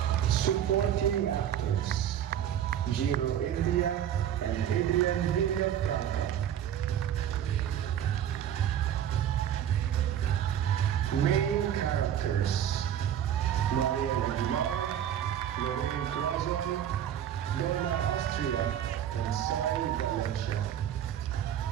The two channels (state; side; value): quieter; left; 10.2 dB